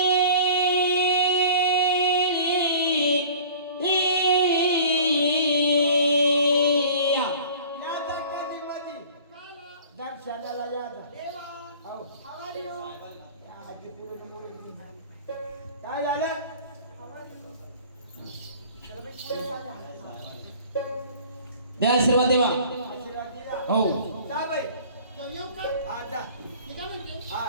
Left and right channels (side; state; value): both; inverted; correlation -0.45